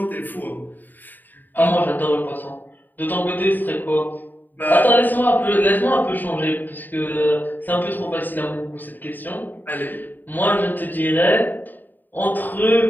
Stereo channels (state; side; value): late; right; 0.089 ms